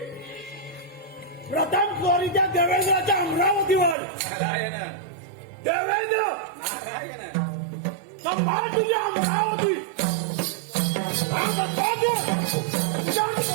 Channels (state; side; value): drops out; left; at 4.0 s